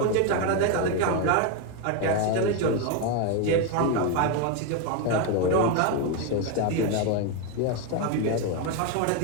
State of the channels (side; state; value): both; different; correlation 0.02